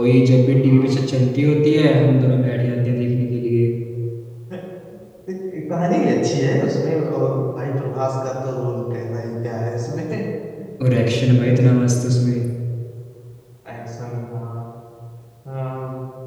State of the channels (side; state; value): both; identical; correlation 1.00